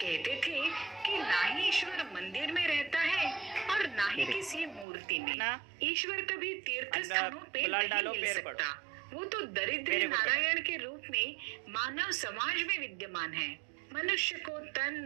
थे कि ना ही ईश्वर मंदिर में रहता है और ना ही किसी मूर्ति में। ईश्वर कभी तीर्थ स्थानों पे नहीं मिल सकता, वो तो दरिद्र नारायण के रूप में मानव समाज में विद्यमान है। मनुष्य को तन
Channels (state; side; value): drops out; left; at 4.9 s